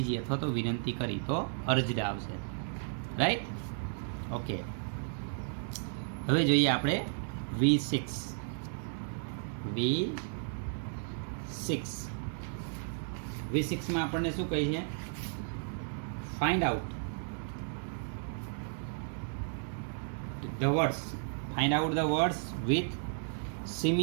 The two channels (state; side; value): silent; left; digital silence